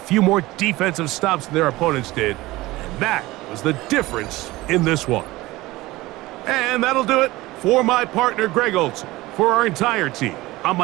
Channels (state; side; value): quieter; left; 19.1 dB